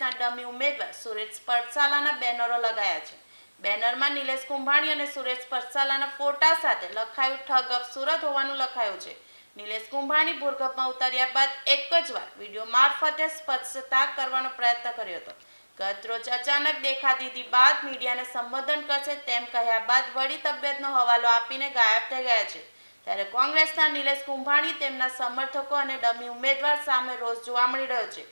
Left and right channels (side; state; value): both; inverted; correlation -1.00